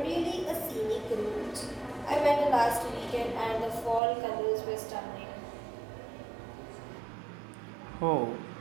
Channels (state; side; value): drops out; left; at 4.0 s